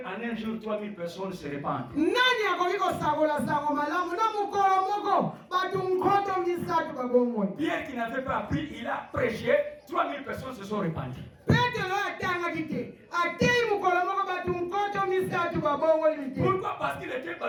en un jour 3000 personnes se répandent. Nani akoki kosabola sango malamu na mukolo moko batu nkoto misatu babongwe. Pierre qui n'avait pas appris, il a prêché, 3000 personnes se sont répandues. Pourquoi? Parce qu'il était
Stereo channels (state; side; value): identical; both; correlation 1.00